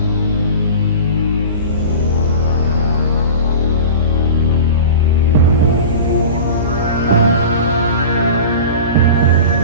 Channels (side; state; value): both; inverted; correlation -0.34